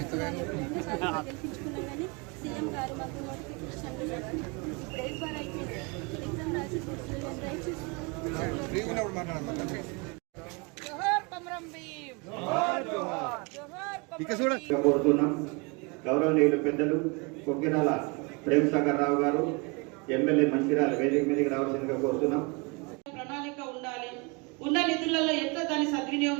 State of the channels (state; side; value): quieter; left; 29.6 dB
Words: గౌరవనీయులు పెద్దలు కొక్కిరాల ప్రేమసాగర్ రావు గారు ఎమ్మెల్యే మంచిర్యాల వేదిక మీదకి రావాల్సిందిగా కోరుతున్నాం. ప్రణాళిక ఉండాలి. ఉన్న నిధులలో ఎట్లా దాన్ని